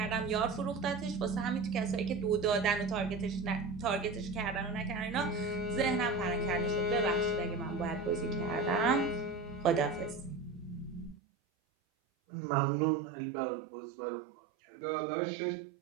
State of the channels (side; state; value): left; drops out; at 11.2 s